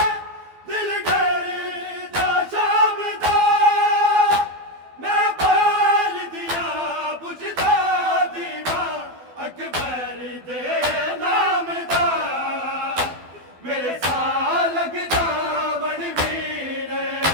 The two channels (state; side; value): late; left; 12 ms